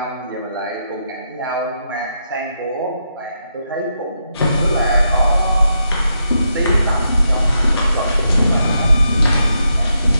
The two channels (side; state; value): both; inverted; correlation -0.82